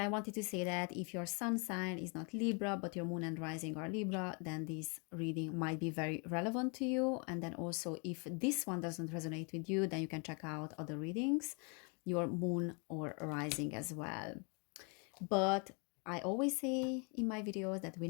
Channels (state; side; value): quieter; right; 35.2 dB